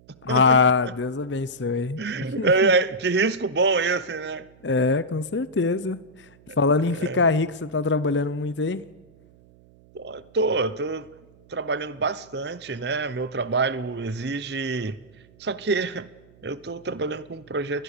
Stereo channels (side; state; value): right; noise; hum, 27 dB below the sound